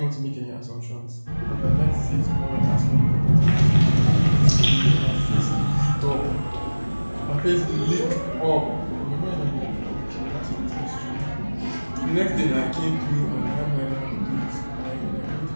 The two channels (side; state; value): both; inverted; correlation -1.00